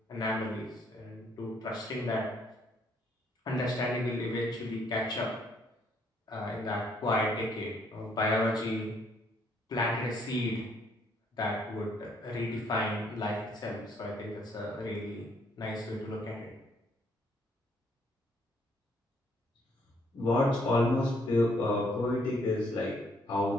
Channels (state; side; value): normal; both; correlation 0.68